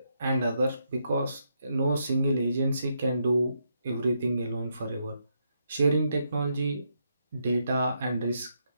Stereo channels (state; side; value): inverted; both; correlation -0.79